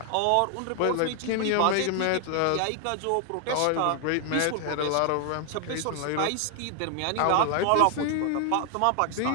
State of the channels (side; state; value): both; different; correlation 0.00